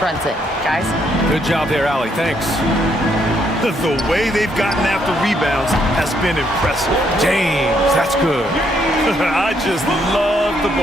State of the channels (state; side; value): normal; both; correlation 0.73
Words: Guys? Good job there, Allie. Thanks. The way they've gotten after rebounds has been impressive. James, that's good. I just love the